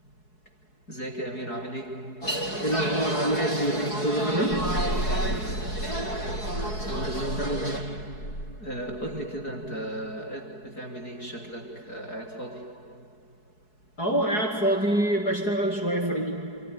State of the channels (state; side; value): late; right; 4.7 ms